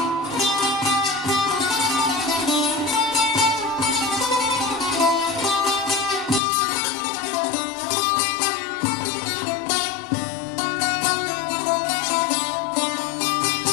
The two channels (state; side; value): drops out; right; at 6.4 s